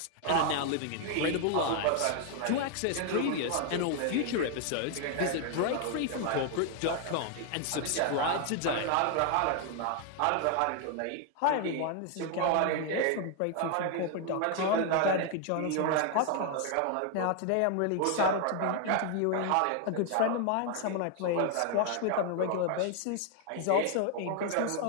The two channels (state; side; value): different; both; correlation 0.00